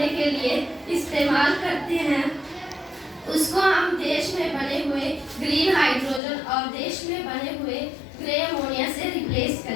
के लिए इस्तेमाल करते हैं। उसको हम देश में बने हुए ग्रीन हाइड्रोजन और देश में बने हुए ग्रे अमोनिया से रिप्लेस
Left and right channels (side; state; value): right; drops out; at 6.2 s